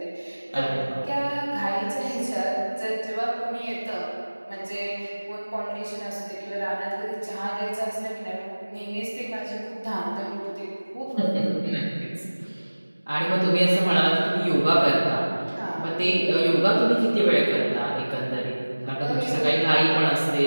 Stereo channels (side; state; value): both; inverted; correlation -1.00